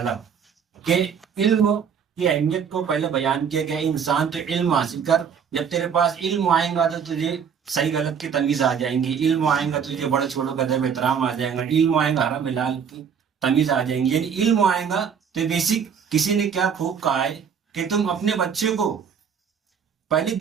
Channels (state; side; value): quieter; left; 7.2 dB